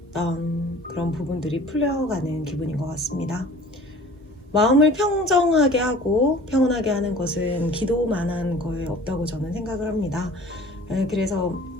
그런 부분들이 풀려가는 기분인 것 같습니다. 마음을 평정하게 하고 평온하게 하는 것은 기도만한 거에 없다고 저는 생각을 합니다. 그래서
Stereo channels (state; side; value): normal; both; correlation 0.46